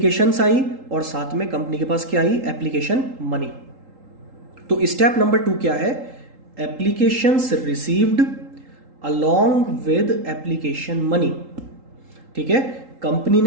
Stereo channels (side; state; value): left; late; 3.8 ms